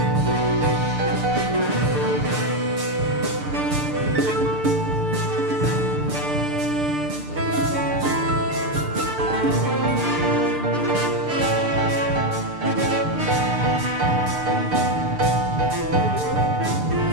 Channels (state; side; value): late; left; 6.7 ms